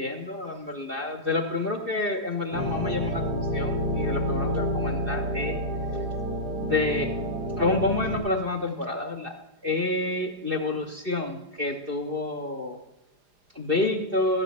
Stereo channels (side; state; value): left; late; 4.9 ms